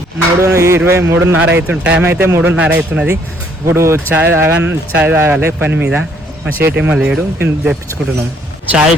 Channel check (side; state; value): both; normal; correlation 0.65